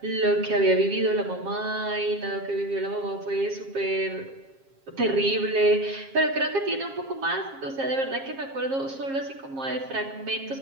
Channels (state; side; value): late; left; 7.4 ms